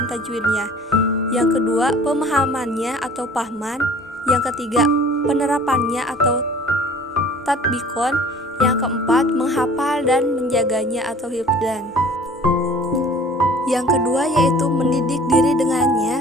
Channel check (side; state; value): both; normal; correlation 0.48